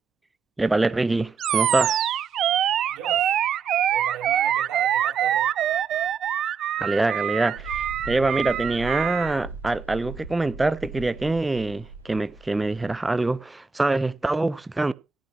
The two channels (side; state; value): left; quieter; 5.0 dB